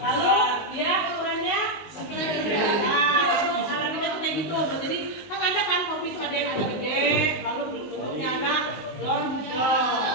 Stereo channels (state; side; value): late; right; 19 ms